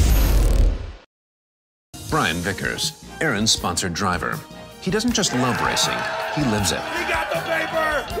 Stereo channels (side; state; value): both; identical; correlation 1.00